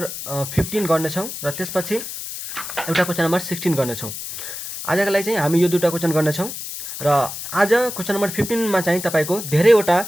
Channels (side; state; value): left; noise; hiss, 8 dB below the sound